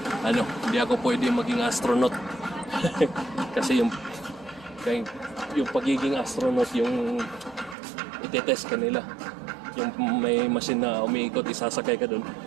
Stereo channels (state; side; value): drops out; left; at 7.8 s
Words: hindi ako pwede maging astronaut. Kasi yung pagiging astronaut yung itetest kanila. Yung may machine na umiikot, isasakay ka doon.